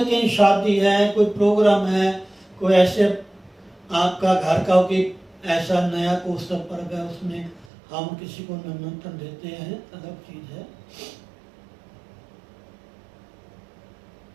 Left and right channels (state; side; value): drops out; left; at 7.7 s